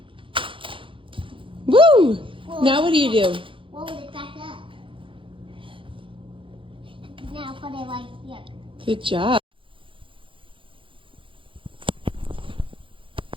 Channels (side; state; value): left; late; 0.25 ms